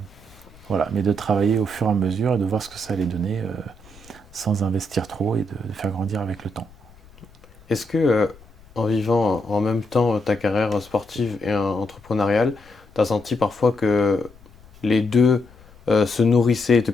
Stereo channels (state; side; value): noise; left; rumble, 25 dB below the sound